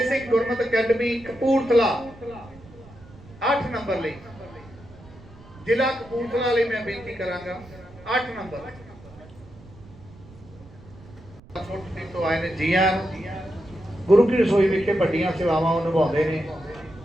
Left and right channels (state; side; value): noise; right; rumble, 21 dB below the sound